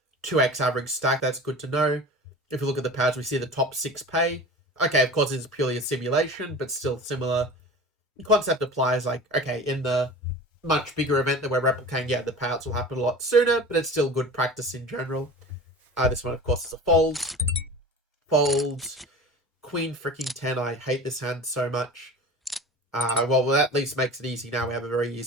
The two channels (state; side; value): normal; both; correlation 0.36